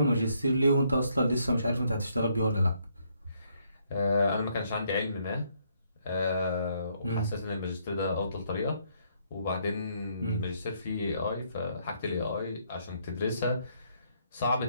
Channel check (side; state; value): both; inverted; correlation -0.71